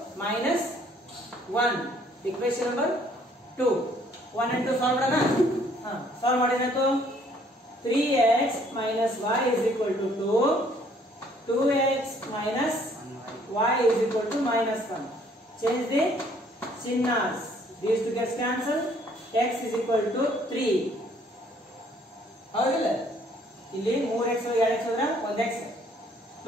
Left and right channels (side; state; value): both; normal; correlation 0.62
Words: minus 1. Equation number 2. 1 and 2 solve ಮಾಡೋಣ. solve ಮಾಡಿದ್ರಾಯ್ತು. 3x minus y is equal to 2. 2x minus y is equal to minus 1. Change the chinnas. These two gets cancelled. X is equal to 3. ಹೌದಿಲ್ಲ? ಇಲ್ಲಿ 3x 2x ಹೋದ್ರೆ 1x.